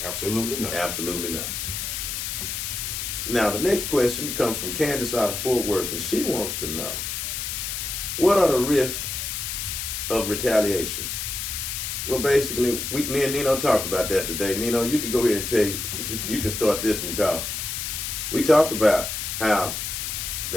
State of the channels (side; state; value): left; noise; hiss, 4 dB below the sound